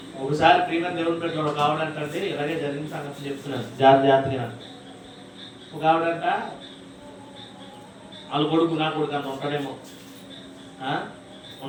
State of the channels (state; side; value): identical; both; correlation 1.00